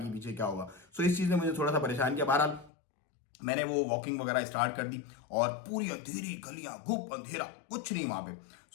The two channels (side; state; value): right; drops out; at 2.7 s